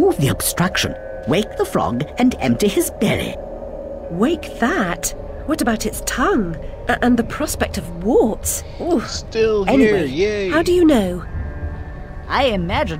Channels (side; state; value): both; identical; correlation 1.00